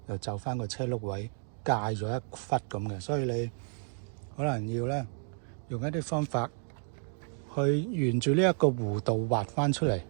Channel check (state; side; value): silent; left; 57 dB below the other